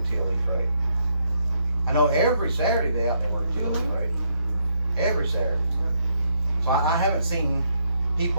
TLE freight. I know every Saturday they out there working TLE freight. Every Saturday. So I haven't seen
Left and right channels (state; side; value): inverted; both; correlation -0.75